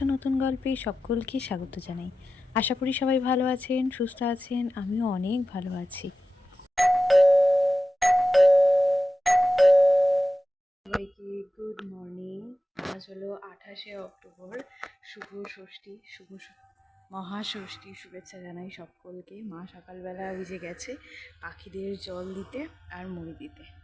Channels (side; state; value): both; normal; correlation 0.94